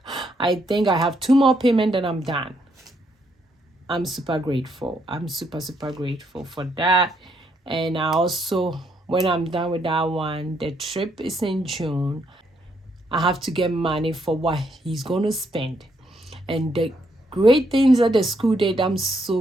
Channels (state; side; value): normal; both; correlation 0.74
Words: I think I have 2 more payments and I'm done. I'm super grateful. I'm super grateful for that. And I also, when I'm done with that one, the trip is in June. I have to get money for what he's going to spend. And the great things that the school did, I'm